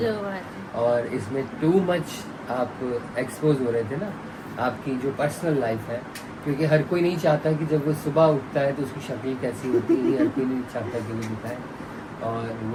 है। और इसमें टू मच आप एक्सपोज हो रहे थे ना, आपकी जो पर्सनल लाइफ है, क्योंकि हर कोई नहीं चाहता कि जब वो सुबह उठता है तो उसकी शक्ल कैसी होती है, हर कोई नहीं चाहता कि वो दिखाए, और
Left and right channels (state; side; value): identical; both; correlation 1.00